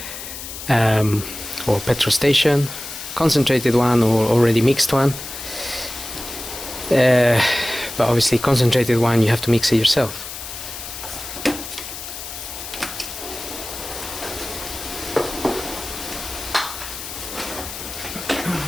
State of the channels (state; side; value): noise; left; hiss, 10 dB below the sound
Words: or petrol station, concentrated one or already mixed one, but obviously concentrated one you have to mix it yourself.